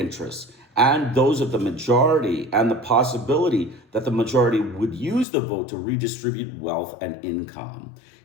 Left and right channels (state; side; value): drops out; right; at 5.2 s